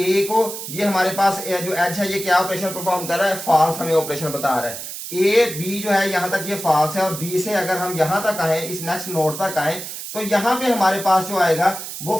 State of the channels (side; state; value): right; noise; hiss, 9 dB below the sound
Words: को, ये हमारे पास जो एज है ये क्या ऑपरेशन परफॉर्म कर रहा है, फॉल्स हमें ऑपरेशन बता रहा है। ए बी जो है यहां तक ये फॉल्स है, और बी से अगर हम यहां तक आए, इस नेक्स्ट नोड तक आए, तो यहां पे हमारे पास जो आएगा वो